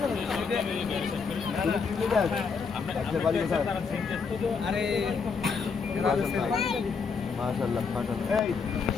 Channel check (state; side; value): quieter; right; 5.4 dB